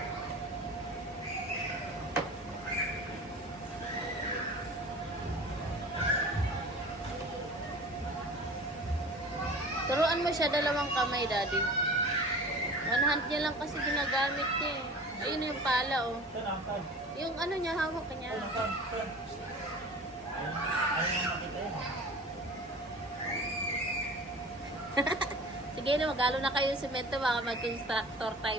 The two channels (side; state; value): both; normal; correlation 0.39